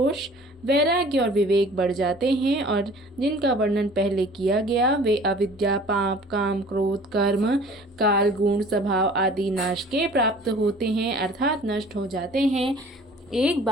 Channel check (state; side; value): normal; both; correlation 0.48